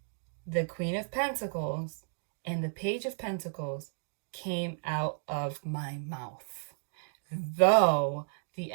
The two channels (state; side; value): silent; left; digital silence